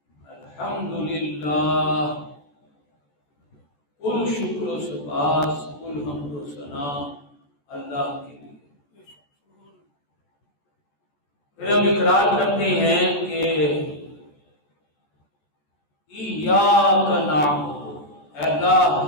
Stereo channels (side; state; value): right; late; 14 ms